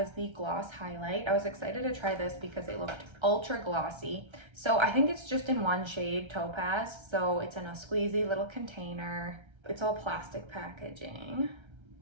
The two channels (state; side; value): late; left; 1.3 ms